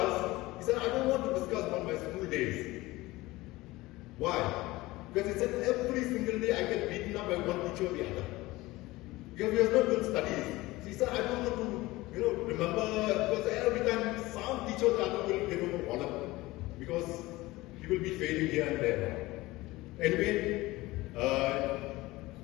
he said, I don't want to discuss about my school days. Why? Because he said every single day I get beaten up by one teacher or the other. Because we have not good studies. So he said, I don't want to remember, because every time some teacher or the other will bother because he will be failing here and there. Anyway,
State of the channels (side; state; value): right; quieter; 19.6 dB